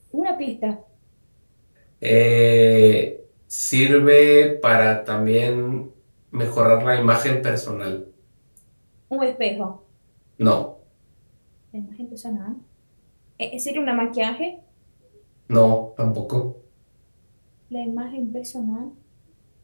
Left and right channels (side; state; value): both; inverted; correlation -1.00